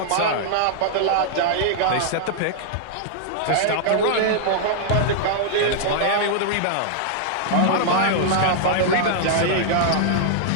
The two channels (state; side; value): different; both; correlation -0.01